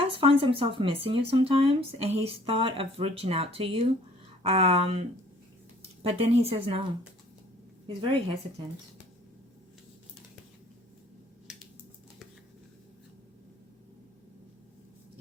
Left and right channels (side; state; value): both; normal; correlation 0.56